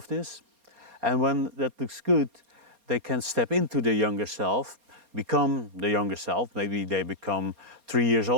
this. And when that looks good, they can step into the younger self, become the younger self. Maybe they become 3 years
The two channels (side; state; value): left; late; 4.3 ms